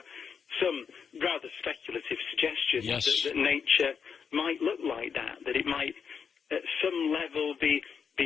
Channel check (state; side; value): quieter; right; 6.6 dB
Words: some rather speculative suggestions that nature might look like that it might at some level be